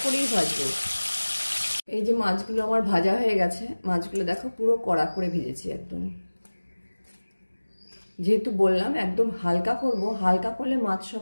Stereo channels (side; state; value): both; inverted; correlation -1.00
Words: করেই ভাজবো। এই যে মাছগুলো আমার ভাজা হয়ে গেছে, মাছগুলো দেখো পুরো কড়া করে ভেজেছি একদম। যেহেতু বললাম একদম হালকা করব, হালকা করলে মাছ